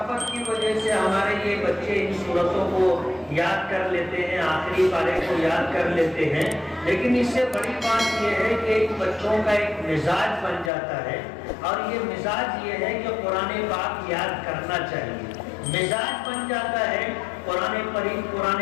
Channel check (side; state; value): right; drops out; at 10.7 s